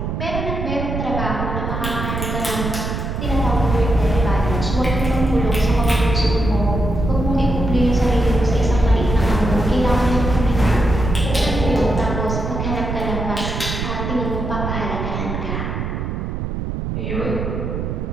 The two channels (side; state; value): right; noise; rumble, 3 dB below the sound